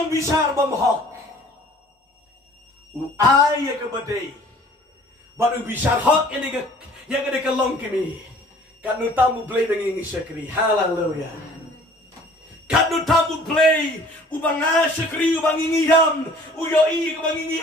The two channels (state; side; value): normal; both; correlation 0.52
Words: bisar bumhok uay ka baday baru bisar hok ini ka yang ada kalong kami kanu tamu BLEI bengingi syakri hallelujah kanu tamu BLEI ubang syakri ubang ingiyam uyoi ubang ingi